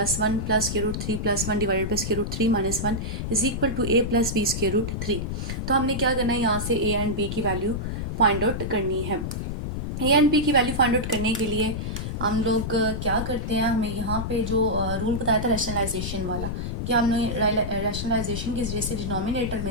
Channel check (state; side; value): noise; left; rumble, 4 dB below the sound